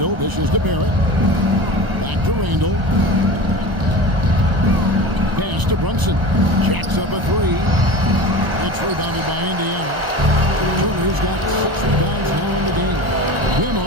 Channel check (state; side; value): late; left; 1.0 ms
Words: dishes to Barrett. Back to Randall. Pass to Brunson. Jacks up a 3. It's rebounded by Indiana. Turner's got 6 rebounds now in the game.